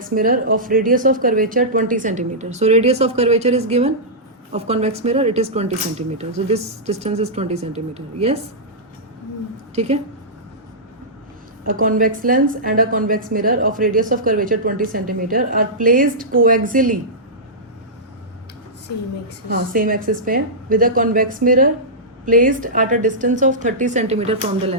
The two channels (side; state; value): both; normal; correlation -0.13